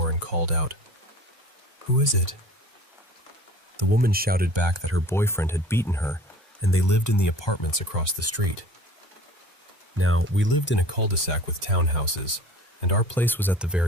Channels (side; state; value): both; normal; correlation 0.44